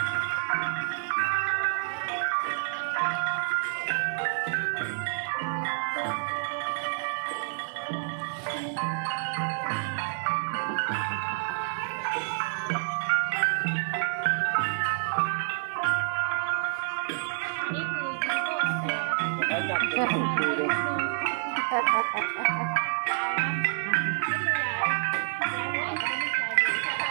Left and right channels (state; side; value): silent; left; 55 dB below the other